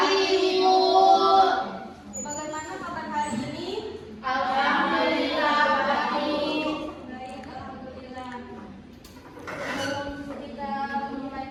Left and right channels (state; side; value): identical; both; correlation 1.00